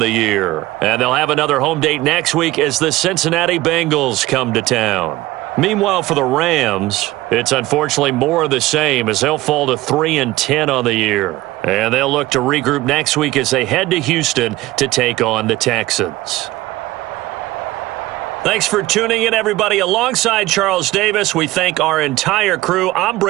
year. And they'll have another home date next week as the Cincinnati Bengals come to town. Meanwhile, for the Rams, it's unfortunately more of the same as they'll fall to 3-10 on the year. And they'll look to regroup next week as they head to Houston to take on the Texans. Thanks for tuning in, everybody. Alongside Charles Davis, we thank our entire crew. I'm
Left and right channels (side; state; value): left; quieter; 18.0 dB